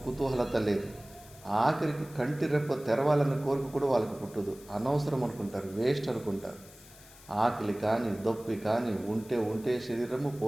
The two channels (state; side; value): noise; left; hiss, 22 dB below the sound